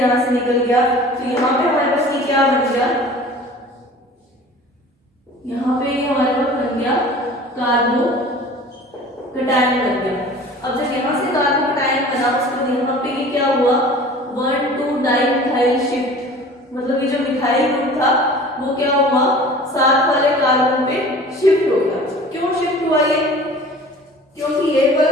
से निकल गया। तो यहाँ पे हमारे पास ये क्या बन गया, यहाँ पे हमारे पास बन गया कार्बोकैटायन बन गया। अब जब यहाँ से कार्बोकैटायन बना, उसके बाद यहाँ पे ये क्या हुआ, 1,2-डाइमिथाइल शिफ्ट, मतलब ये जो मिथाइल ग्रुप था वो क्या हुआ, साथ वाले कार्बन पे शिफ्ट हो गया। क्यों शिफ्ट हुआ ये, क्योंकि ये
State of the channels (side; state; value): both; normal; correlation 0.44